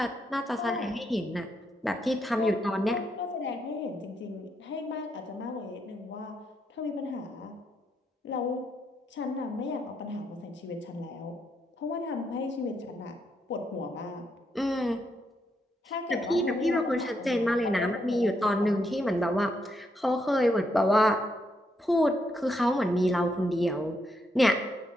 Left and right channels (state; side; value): normal; both; correlation 0.79